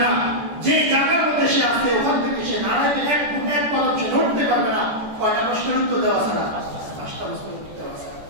না। যে জায়গার মধ্যে সে 5টা বস্তু দেওয়া আছে।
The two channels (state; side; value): late; left; 14 ms